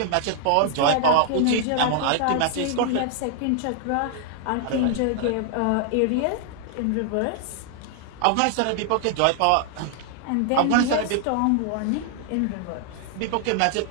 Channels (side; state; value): both; different; correlation 0.00